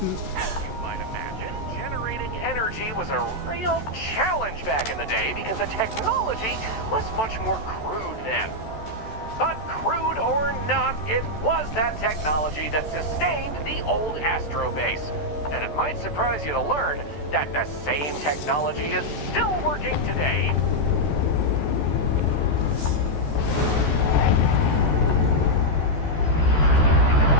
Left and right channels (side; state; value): right; late; 14 ms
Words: As you might imagine, generating energy was a real challenge back in the day because the technology was much more crude then. But crude or not, it was that technology that sustained the old Astro base. And it might surprise you to learn that the same technology is still working today.